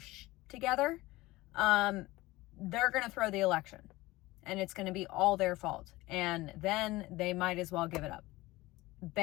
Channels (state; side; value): quieter; right; 19.6 dB